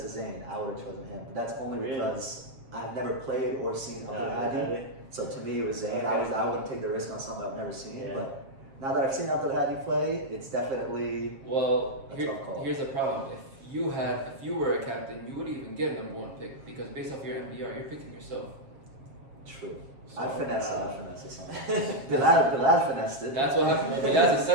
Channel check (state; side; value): late; left; 7.5 ms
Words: to Zane, I would have chosen him. But that's only Really? because I've never played or seen Abdelhadi. So to me, it was Zane. Okay. I wouldn't take the risk on something I've never seen. Yeah. But now that I've seen Abdelhadi play, it's definitely Well, a tough call. here's the problem. If you were a captain, you wouldn't even get a number 1 pick because based off your MBR, you're picking yourself. true. So, I'd finesse it something. Bilal finessed it. That's what happened. Well, that's a